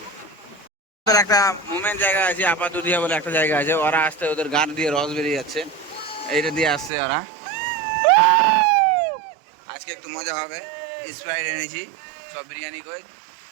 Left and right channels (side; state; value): left; drops out; at 6.9 s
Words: একটা মুভমেন্ট জায়গা আছে, আপা দুধিয়া বলে একটা জায়গা আছে। ওরা আসতে ওদের গান দিয়ে রস বেরিয়ে যাচ্ছে, এইটা দিয়ে আসছে ওরা। আজকে একটু মজা হবে। স্প্রাইট এনেছি, সব বিরিয়ানি কই